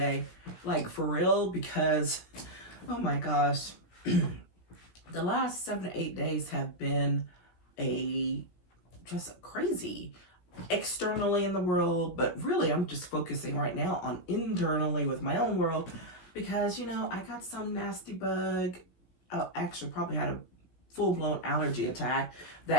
like for real, because oh my gosh, the last 7 to 8 days have been a just crazy externally in the world, but really I'm just focusing right now on internally with my own world because I got some nasty bug. Oh, actually, probably had a full blown allergy attack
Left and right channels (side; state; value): right; late; 17 ms